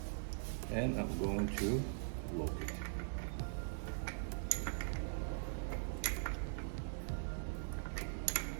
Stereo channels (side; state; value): left; silent; digital silence